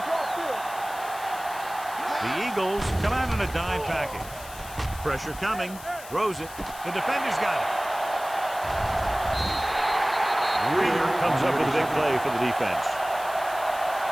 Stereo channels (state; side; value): noise; left; hiss, 16 dB below the sound